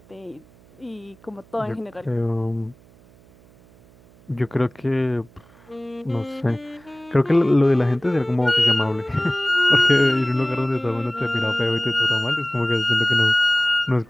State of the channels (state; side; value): noise; right; hum, 27 dB below the sound